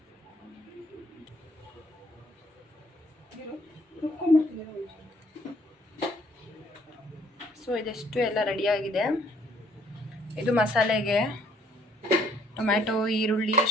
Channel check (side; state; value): both; normal; correlation 0.63